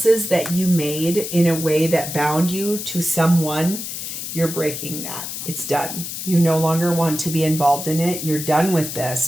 that you made in a way that bound you to someone, You're breaking that. It's done. You no longer want to be involved in it. You're done with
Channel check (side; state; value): left; noise; hiss, 7 dB below the sound